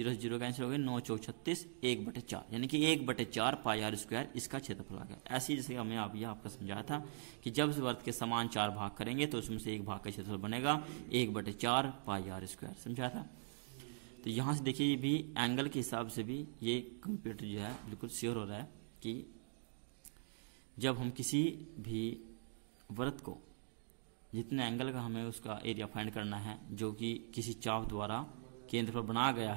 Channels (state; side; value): silent; left; digital silence